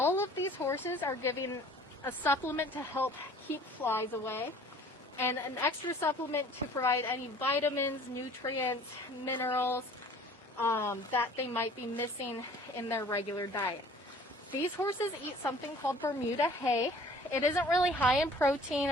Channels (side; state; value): both; normal; correlation 0.51